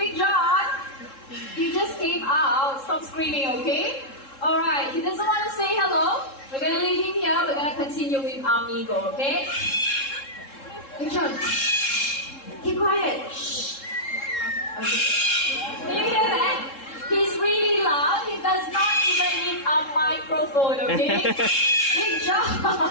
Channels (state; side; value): late; right; 3.7 ms